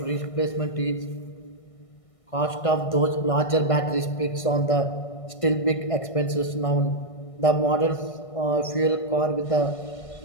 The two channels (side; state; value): right; late; 1.6 ms